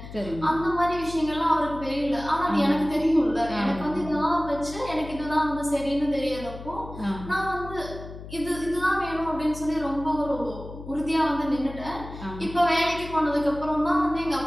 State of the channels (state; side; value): noise; left; hum, 13 dB below the sound